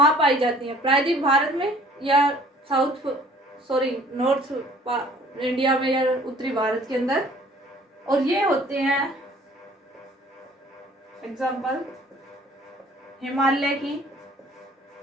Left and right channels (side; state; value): both; normal; correlation 0.54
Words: पाई जाती हैं? प्रायद्वीप भारत में या नॉर्थ इंडिया में या उत्तरी भारत के अंदर? और ये होते हैं एग्जाम्पल, हिमालय